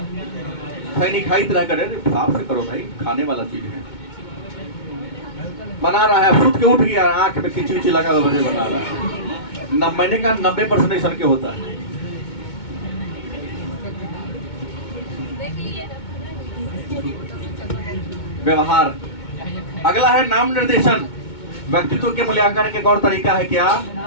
खैनी खाई तरह करे, साफ से करो भाई, खाने वाला चीज है। बना रहा है, फुट के उठ गया, आंख में खिंची खिंची लगा हुआ बना रहा है। मैंने कहा 90% इंसान के होता है। व्यवहार। अगला है नाम निर्देशन। व्यक्तित्व के मूल्यांकन के और तरीका है क्या?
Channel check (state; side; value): late; right; 2.2 ms